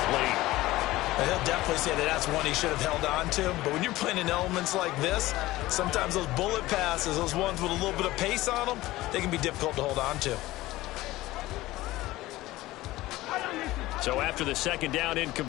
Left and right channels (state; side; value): quieter; right; 17.7 dB